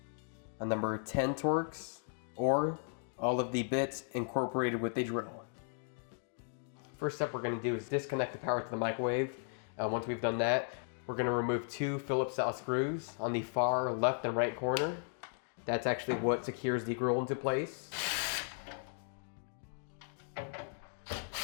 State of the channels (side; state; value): right; silent; 54 dB below the other